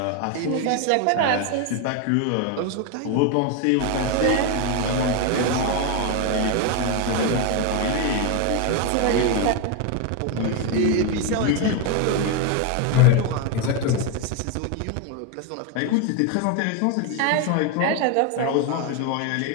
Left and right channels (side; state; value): both; different; correlation 0.02